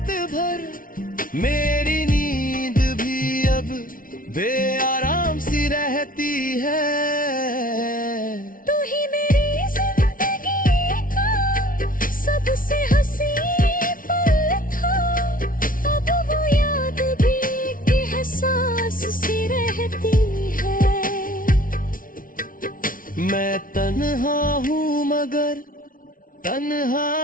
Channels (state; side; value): late; right; 0.40 ms